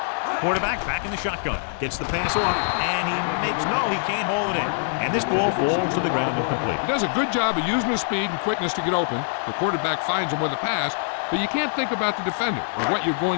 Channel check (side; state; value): right; silent; digital silence